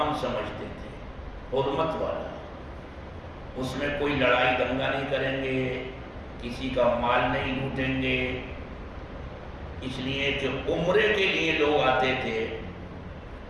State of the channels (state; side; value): identical; both; correlation 1.00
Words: سمجھتے تھے، حرمت والا۔ اس میں کوئی لڑائی دنگا نہیں کریں گے، کسی کا مال نہیں لوٹیں گے، اس لیے کہ عمرے کے لیے لوگ آتے تھے